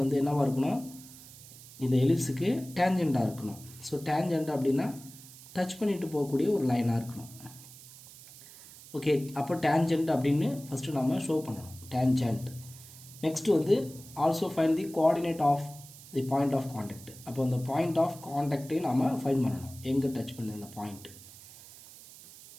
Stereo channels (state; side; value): noise; right; hiss, 18 dB below the sound